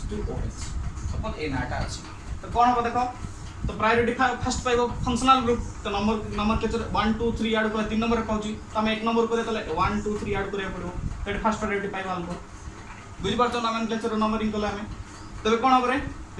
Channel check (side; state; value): both; identical; correlation 1.00